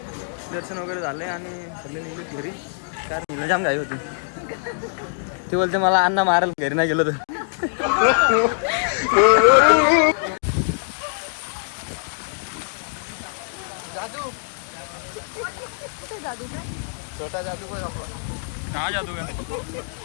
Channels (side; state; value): right; silent; digital silence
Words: दर्शन वगैरे झालंय आणि सगळे निघले घरी. कारण मुलं जाम घाई होती. ते बोलते मला अण्णा मारायला घरी नाही गेलो तर. जादू छोटा जादू हा जादू का